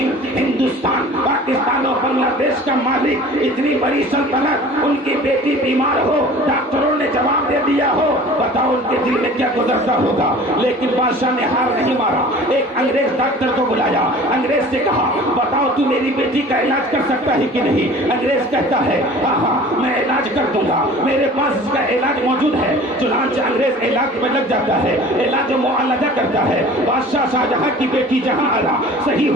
ہندوستان، پاکستان اور بنگلہ دیش کا مالک، اتنی بڑی سلطنت، ان کی بیٹی بیمار ہو، ڈاکٹروں نے جواب دے دیا ہو، بتاؤ ان کے دل میں کیا گزرتا ہوگا۔ لیکن بادشاہ نے ہار نہیں مارا، ایک انگریز ڈاکٹر کو بلایا، انگریز سے کہا بتاؤ تو میری بیٹی کا علاج کر سکتا ہے کہ نہیں؟ انگریز کہتا ہے ہاں ہاں میں علاج کر دوں گا، میرے پاس اس کا علاج موجود ہے۔ چنانچہ انگریز علاج میں لگ جاتا ہے، علاج و معالجہ کرتا ہے، بادشاہ شاہجہاں کی بیٹی جہاں آرا صحیح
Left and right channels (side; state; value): both; normal; correlation 0.44